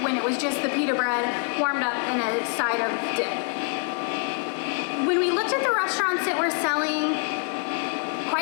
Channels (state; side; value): quieter; right; 39.9 dB